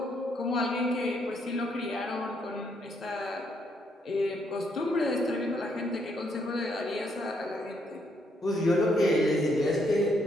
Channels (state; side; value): normal; both; correlation 0.73